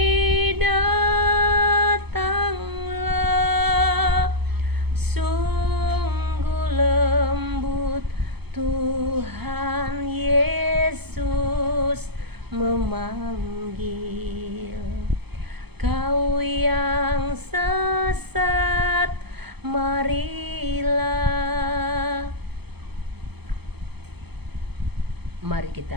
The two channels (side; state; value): left; late; 0.98 ms